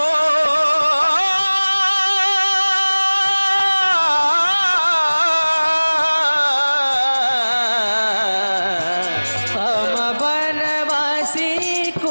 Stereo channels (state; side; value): inverted; both; correlation -1.00